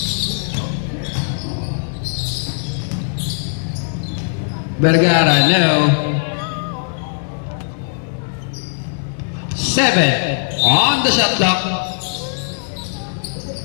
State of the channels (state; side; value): silent; right; digital silence